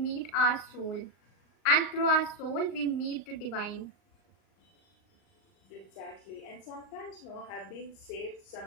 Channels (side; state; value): right; late; 38 ms